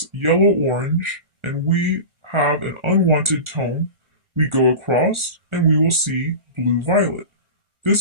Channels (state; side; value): late; left; 1.4 ms